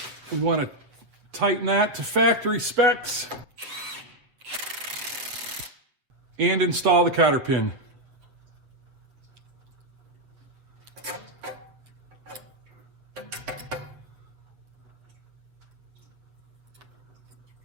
We want to tighten that to factory specs and install the cotter pin.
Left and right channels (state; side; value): late; left; 8.2 ms